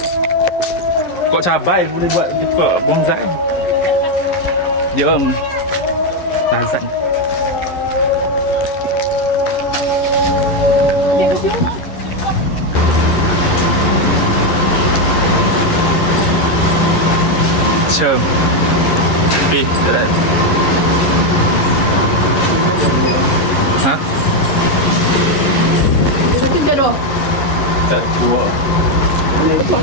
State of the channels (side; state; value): right; late; 11 ms